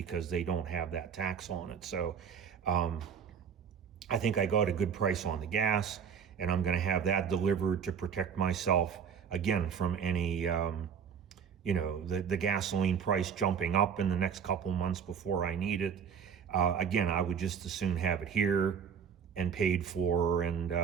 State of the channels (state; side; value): quieter; left; 7.2 dB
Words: they don't have that tax on it. So I think I got a good price on the gas, and I'm going to have that delivered to protect myself again from any, the gasoline price jumping up in the next couple months before I need it. Again, I would just as soon have it here and paid for and